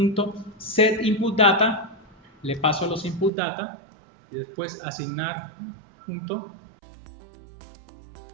input data, le paso los input data y después asignar punto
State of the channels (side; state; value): left; drops out; at 3.3 s